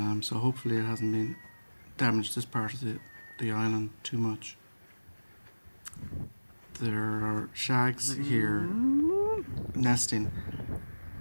So hopefully it hasn't been damaged this part of the island too much. There are shags here nesting.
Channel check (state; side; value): inverted; both; correlation -1.00